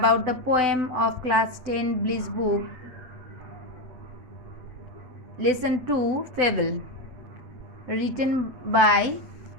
the poem of class 10 Bliss book, lesson 2, Fable, written by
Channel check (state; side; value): late; left; 7.9 ms